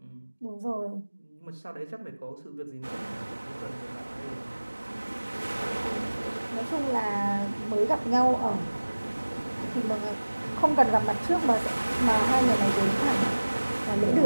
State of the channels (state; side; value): inverted; both; correlation -1.00